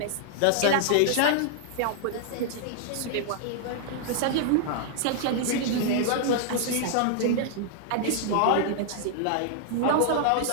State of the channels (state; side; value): different; both; correlation -0.01